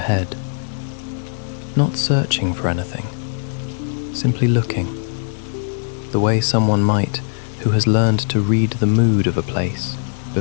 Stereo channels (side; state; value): right; silent; 60 dB below the other